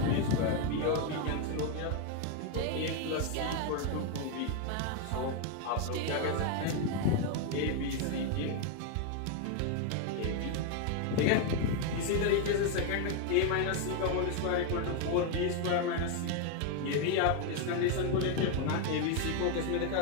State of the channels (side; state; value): both; different; correlation 0.01